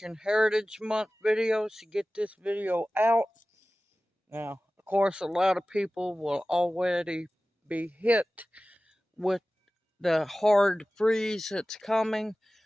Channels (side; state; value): both; normal; correlation 0.96